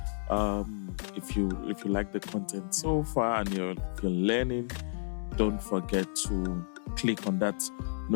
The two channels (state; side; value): silent; right; digital silence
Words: if you like the content so far, and if you're learning. Don't forget to click on that